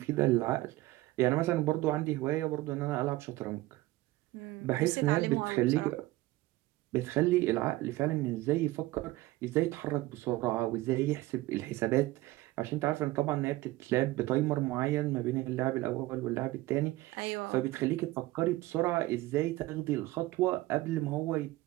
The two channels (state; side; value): quieter; left; 18.3 dB